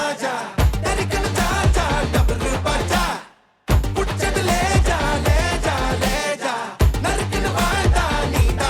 தரிக்கன சாச்சா டபுள் பாச்சா புச்சது லேஜா லேஜா லேஜா நறுக்குன வாடா நீ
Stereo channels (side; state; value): both; identical; correlation 1.00